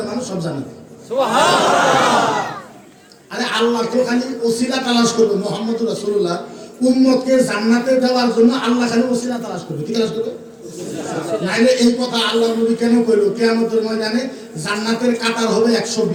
মানুষ সব জান্নাতে। আরে আল্লাহ তো খালি ওসিলা তালাশ করবে, মুহাম্মদুর রাসূলুল্লাহ উম্মতকে জান্নাতে দেওয়ার জন্য আল্লাহ খালি ওসিলা তালাশ করবে। কি তালাশ করবে? নাইলে এই কথা আল্লাহ নবী কেন কইলো কিয়ামতের ময়দানে জান্নাতের কাতার হবে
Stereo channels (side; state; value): both; identical; correlation 1.00